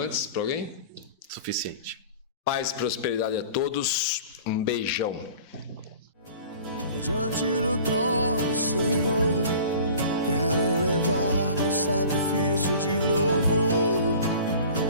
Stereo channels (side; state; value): both; inverted; correlation -0.44